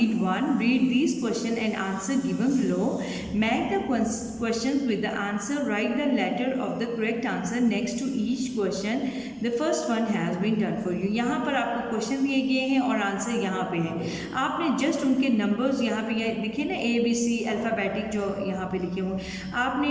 one, read this question and answer given below, match the question with the answer, write the letter of the correct answer next to each question, the first one has been done for you. यहाँ पर आपको question दिए गए हैं और answer यहाँ पे है। आपने जस्ट उनके नंबर्स यहाँ पे दिखे ना, ABC अल्फ़ाबेटिक जो यहाँ पे लिखे हुए, आपने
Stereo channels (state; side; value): identical; both; correlation 1.00